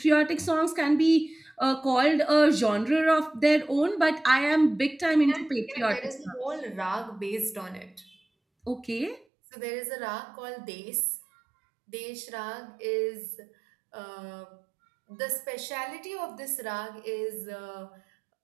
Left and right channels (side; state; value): left; drops out; at 9.2 s